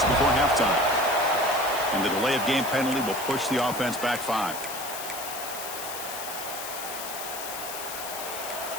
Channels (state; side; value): noise; left; hiss, 8 dB below the sound